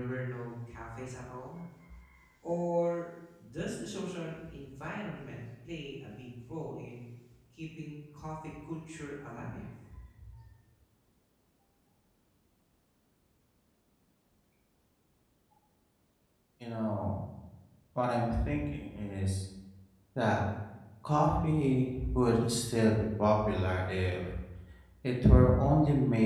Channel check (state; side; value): identical; both; correlation 1.00